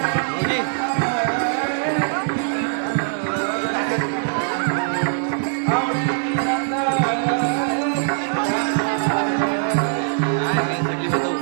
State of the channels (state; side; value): silent; left; digital silence